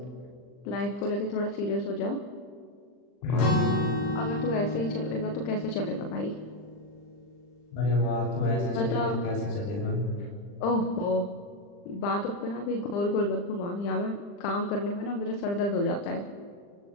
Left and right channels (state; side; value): late; right; 40 ms